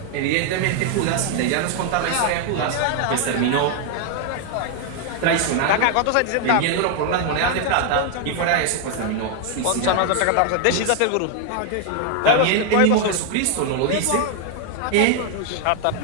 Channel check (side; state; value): both; different; correlation 0.00